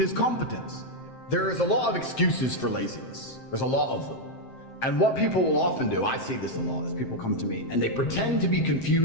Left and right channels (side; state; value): right; late; 7.7 ms